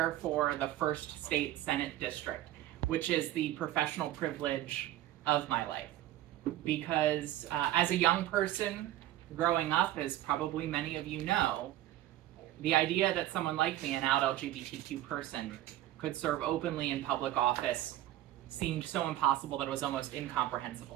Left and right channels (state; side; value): quieter; left; 13.9 dB